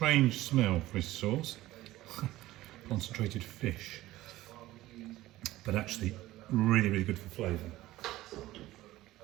smell, fish sauce. Concentrated fish. But actually really, really good for flavour.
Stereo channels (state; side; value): quieter; left; 16.5 dB